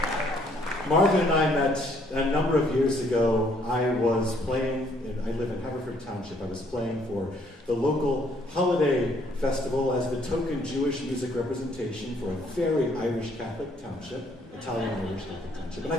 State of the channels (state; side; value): normal; both; correlation 0.66